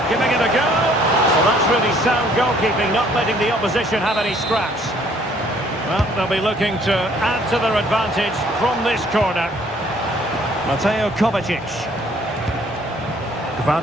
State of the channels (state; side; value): normal; both; correlation 0.61